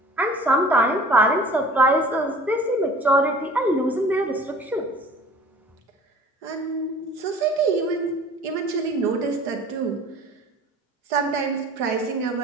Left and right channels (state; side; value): normal; both; correlation 0.46